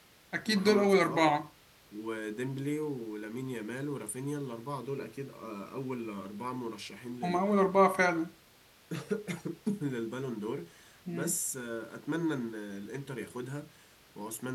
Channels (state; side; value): identical; both; correlation 1.00